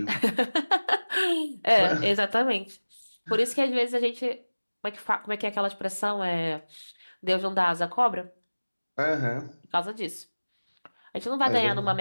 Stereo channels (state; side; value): inverted; both; correlation -1.00